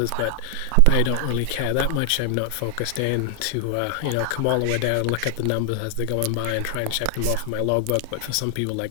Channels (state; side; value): different; both; correlation 0.00